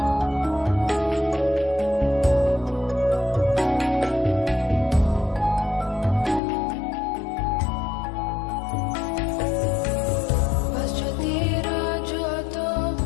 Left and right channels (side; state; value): right; drops out; at 6.4 s